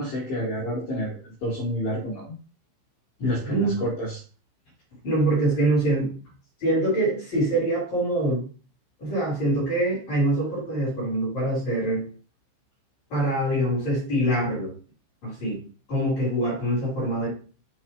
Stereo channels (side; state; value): right; late; 15 ms